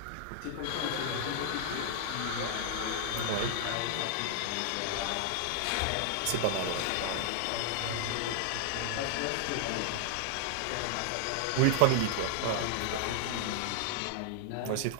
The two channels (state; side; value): different; both; correlation -0.01